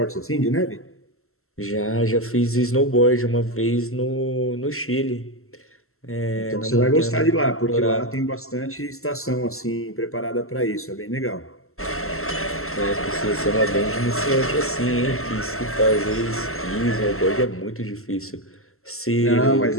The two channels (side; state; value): right; late; 0.62 ms